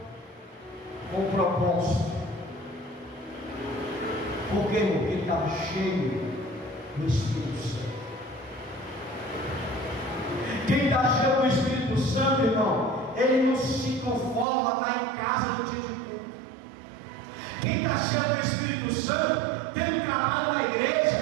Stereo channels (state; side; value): drops out; left; at 14.5 s